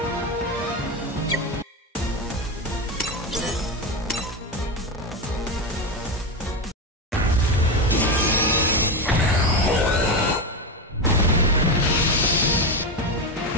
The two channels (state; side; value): normal; both; correlation 0.14